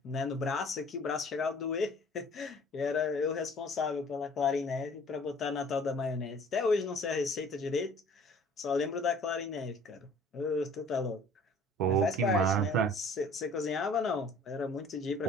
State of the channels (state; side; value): normal; both; correlation 0.51